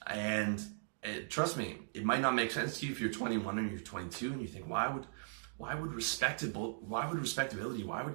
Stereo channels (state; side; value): silent; left; digital silence